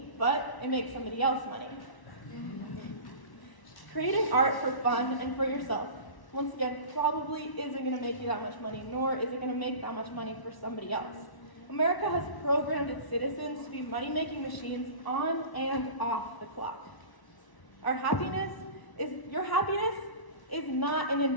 but it makes somebody else money. Creating art for fun and for yourself, once again, probably isn't going to make you that much money, nor is it going to make that much money for somebody else. America has programmed its citizens to be money-making machines on and off the clock. Your happiness is not an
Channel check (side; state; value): right; late; 1.0 ms